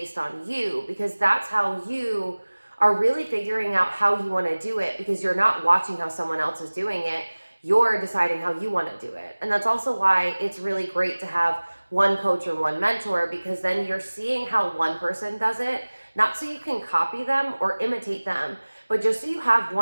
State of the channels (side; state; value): both; inverted; correlation -1.00